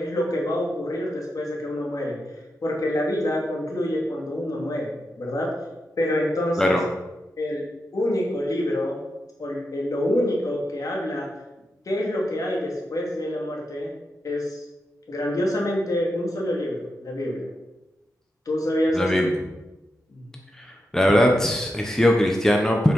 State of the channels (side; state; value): both; normal; correlation 0.87